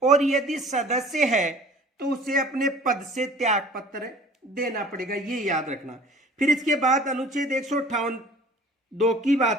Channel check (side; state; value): both; normal; correlation 0.47